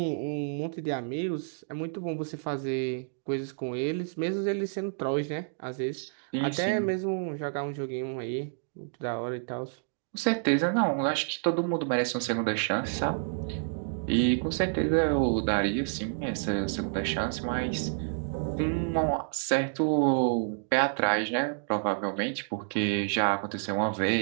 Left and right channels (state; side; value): silent; left; digital silence